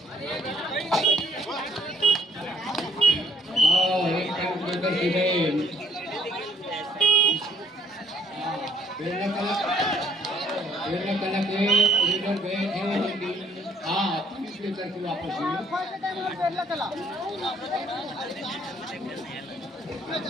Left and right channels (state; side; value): normal; both; correlation 0.63